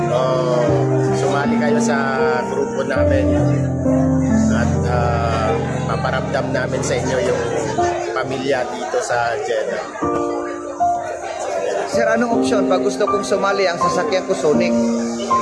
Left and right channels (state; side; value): identical; both; correlation 1.00